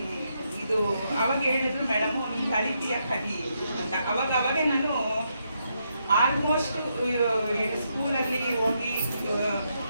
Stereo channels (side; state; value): both; inverted; correlation -0.79